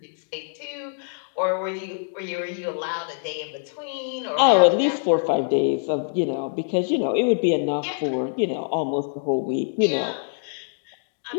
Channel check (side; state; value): right; silent; digital silence